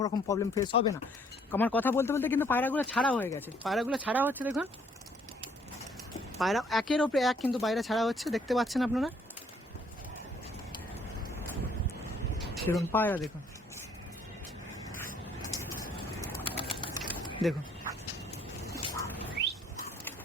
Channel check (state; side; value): normal; both; correlation 0.63